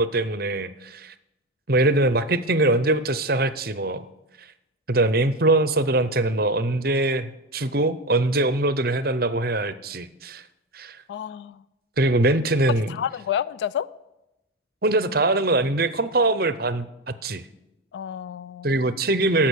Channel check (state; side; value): normal; both; correlation 0.18